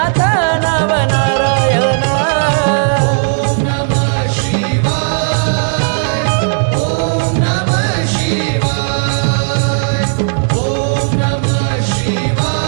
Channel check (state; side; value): silent; left; 65 dB below the other